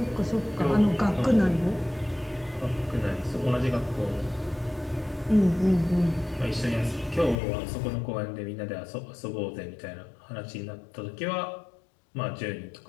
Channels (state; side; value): drops out; right; at 7.4 s